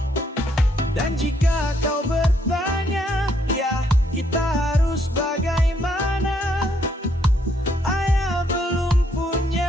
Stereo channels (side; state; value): both; normal; correlation 0.71